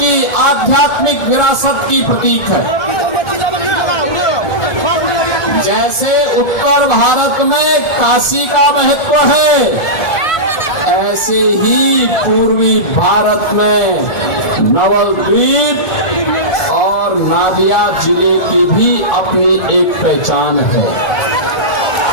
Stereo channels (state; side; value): late; right; 1.5 ms